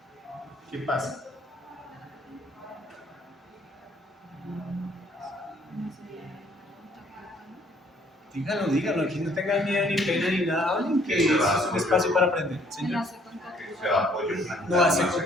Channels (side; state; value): both; normal; correlation 0.62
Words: ¿Qué pasa? Díganlo, aquí no tengan miedo ni pena ni nada, hablen que eso es un espacio para aprender. Señor. Que sea apoyo plantar, No hace no